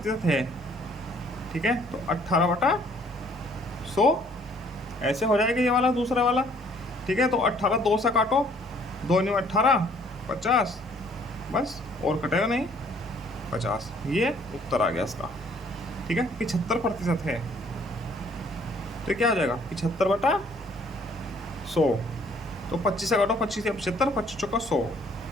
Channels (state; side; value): normal; both; correlation 0.60